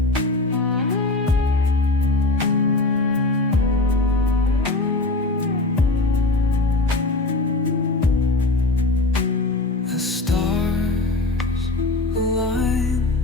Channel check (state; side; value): quieter; right; 3.1 dB